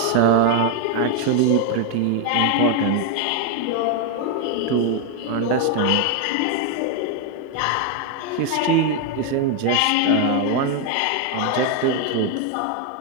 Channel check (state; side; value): different; both; correlation 0.01